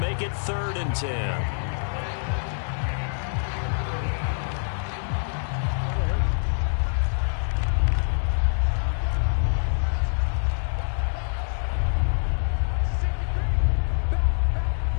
it 3rd and 10.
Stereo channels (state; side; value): silent; right; digital silence